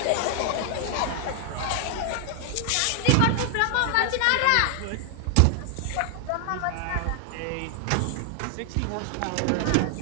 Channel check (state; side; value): different; both; correlation 0.00